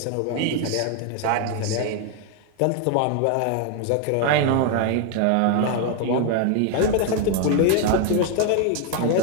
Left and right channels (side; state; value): both; different; correlation 0.00